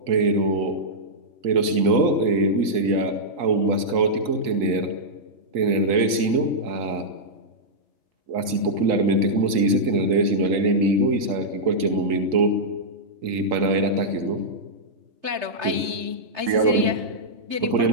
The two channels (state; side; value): late; left; 3.9 ms